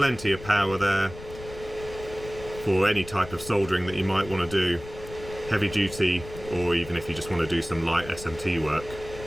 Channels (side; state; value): left; noise; rumble, 14 dB below the sound